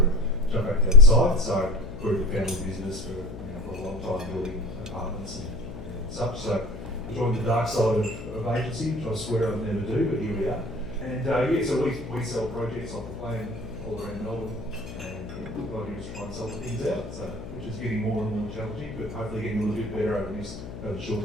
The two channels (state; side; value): noise; left; hum, 11 dB below the sound